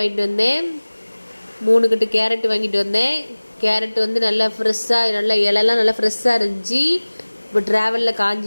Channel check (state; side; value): inverted; both; correlation -1.00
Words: வந்தேன். 3 கட்டு கேரட் வாங்கிட்டு வந்தேன். கேரட் வந்து நல்லா ஃப்ரெஷ்ஷாக, நல்லா இலெல்லாம் நல்லா ஃப்ரெஷ்ஷாக இருந்துச்சு. இப்போ ட்ராவலில்